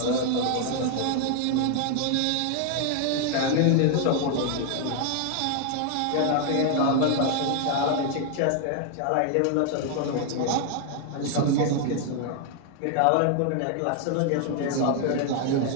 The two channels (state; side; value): different; both; correlation 0.00